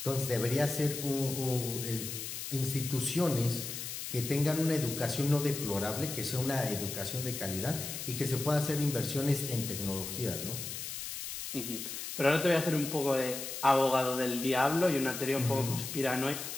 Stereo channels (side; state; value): left; noise; hiss, 6 dB below the sound